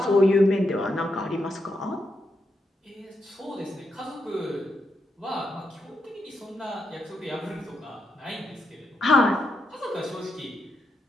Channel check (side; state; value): both; normal; correlation 0.82